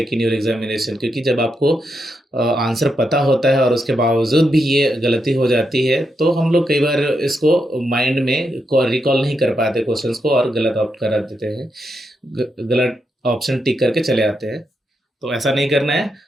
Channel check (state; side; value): normal; both; correlation 0.83